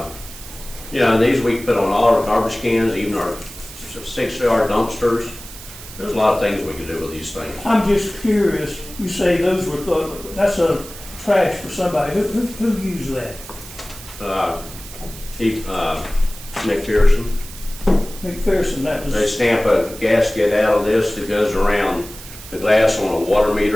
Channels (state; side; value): noise; right; hiss, 15 dB below the sound